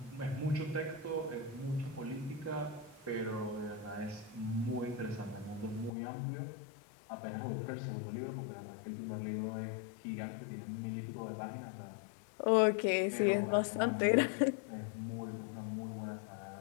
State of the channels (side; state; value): right; drops out; at 5.9 s